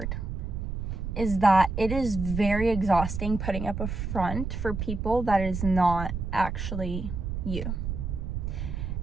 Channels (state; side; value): noise; right; rumble, 4 dB below the sound